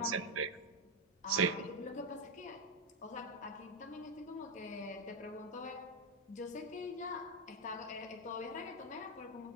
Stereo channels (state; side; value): normal; both; correlation 0.03